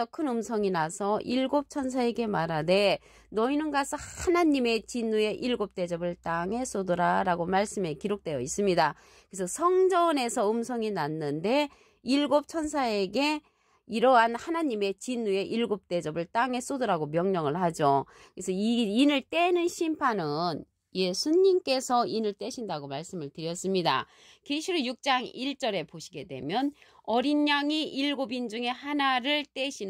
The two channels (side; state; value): both; identical; correlation 1.00